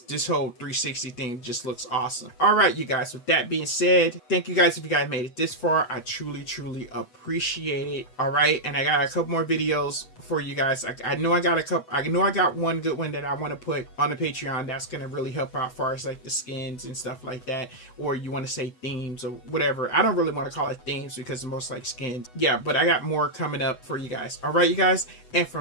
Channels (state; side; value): late; right; 8.1 ms